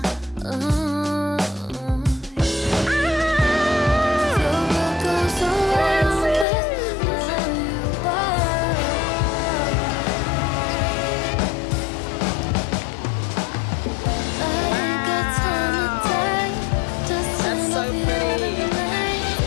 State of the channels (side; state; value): right; drops out; at 6.5 s